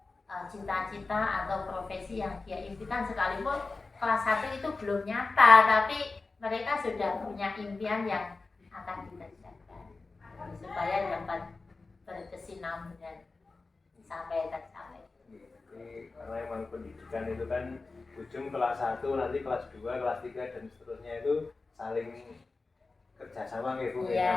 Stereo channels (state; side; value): quieter; right; 3.8 dB